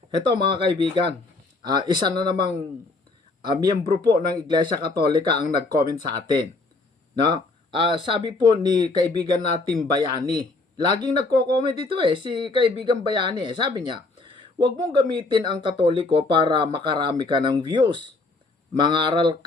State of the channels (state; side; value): quieter; right; 3.4 dB